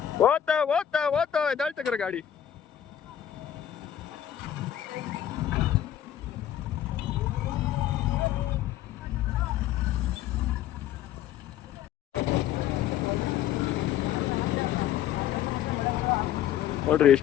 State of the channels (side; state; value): right; quieter; 10.8 dB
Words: ಓದ್ತಾ ಓದ್ತಾ ಓದ್ತಾ ಎದ್ದಾಳ್ತಕ್ರ ಗಾಡಿ. ನೋಡ್ರಿ